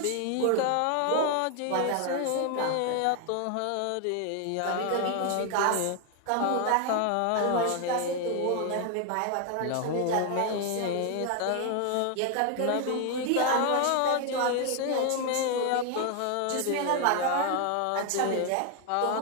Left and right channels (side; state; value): both; different; correlation 0.01